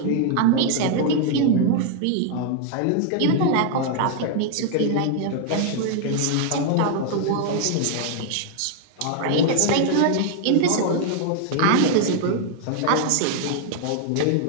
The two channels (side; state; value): both; different; correlation 0.00